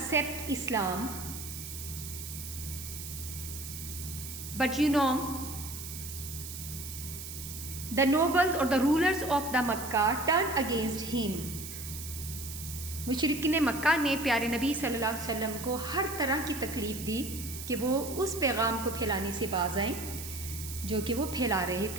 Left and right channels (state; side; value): noise; right; hiss, 9 dB below the sound